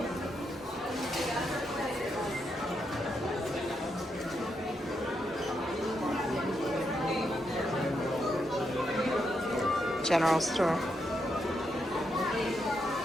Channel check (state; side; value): normal; both; correlation 0.81